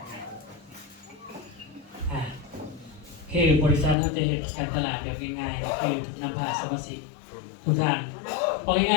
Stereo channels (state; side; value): drops out; right; at 4.0 s